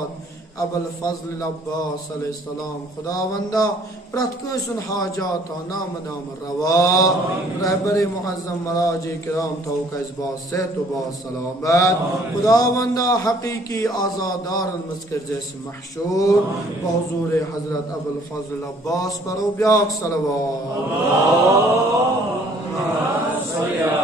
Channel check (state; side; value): normal; both; correlation 0.59